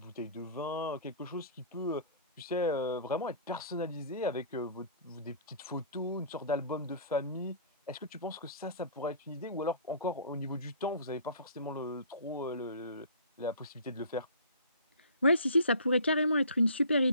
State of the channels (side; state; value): both; inverted; correlation -0.45